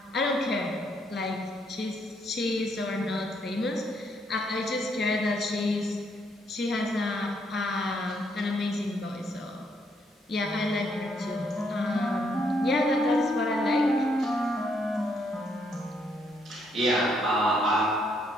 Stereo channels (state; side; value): normal; both; correlation 0.73